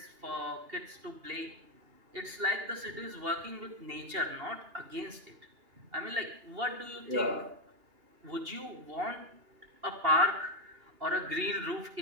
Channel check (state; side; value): late; left; 2.8 ms